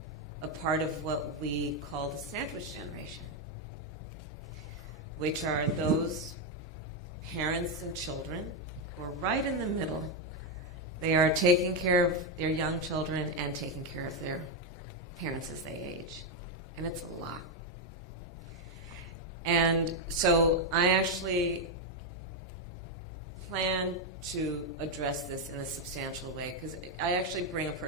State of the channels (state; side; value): normal; both; correlation 0.04